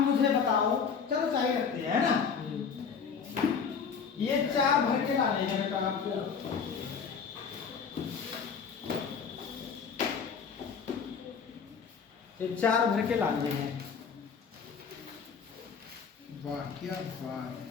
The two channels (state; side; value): quieter; right; 6.2 dB